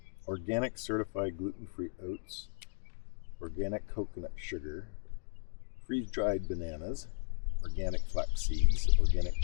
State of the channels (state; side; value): silent; right; 54 dB below the other